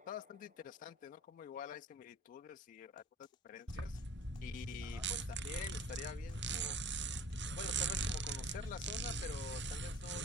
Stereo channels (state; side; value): normal; both; correlation 0.44